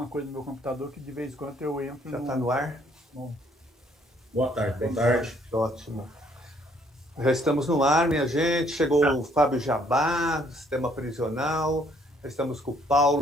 coisa no meu computador que de vez em quando eu entro Já está no ar? num- Boa tarde, boa Boa tarde. Ótimo. Já estamos no ar, minha gente. Chegou o Fábio Jabá, do Sistema Prisional. Já estamos com o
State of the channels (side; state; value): both; normal; correlation 0.65